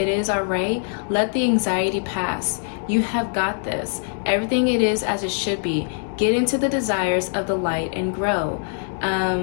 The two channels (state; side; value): silent; right; digital silence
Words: is all right. Let the anxiety pass. You have got this. Everything it is as it should be. Get into the desires of the light and grow.